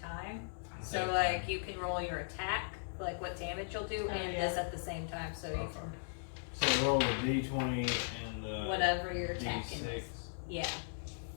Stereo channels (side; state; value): right; silent; digital silence